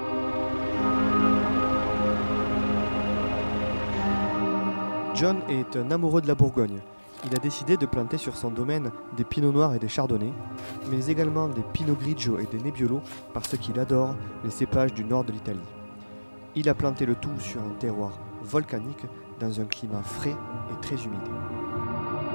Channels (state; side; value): inverted; both; correlation -1.00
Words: John est un amoureux de la Bourgogne. Il a décidé de planter sur son domaine des pinots noirs et des chardonnays, mais également des pinot grigio et des nebbiolo parce qu'il adore les cépages du nord de l'Italie. Il a planté le tout sur un terroir volcanique dans un climat frais et très humide.